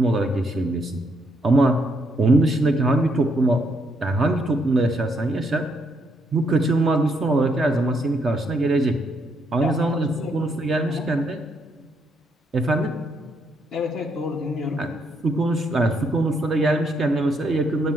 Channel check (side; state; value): both; normal; correlation 0.75